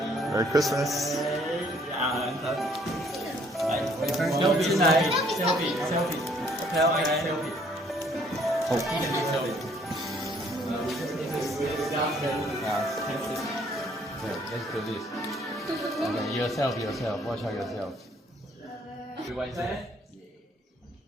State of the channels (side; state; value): both; normal; correlation 0.62